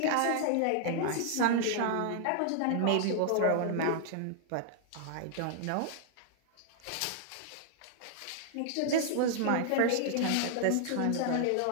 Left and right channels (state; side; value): different; both; correlation -0.01